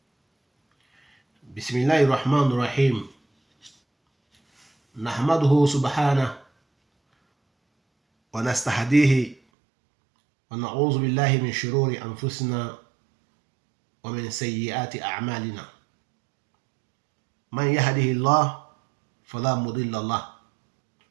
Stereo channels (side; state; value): left; drops out; at 9.3 s